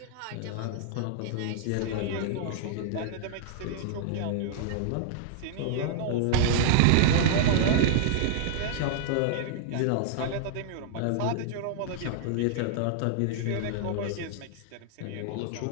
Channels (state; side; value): different; both; correlation -0.01